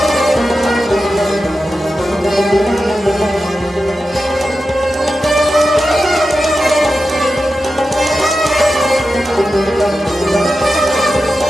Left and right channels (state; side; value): normal; both; correlation 0.91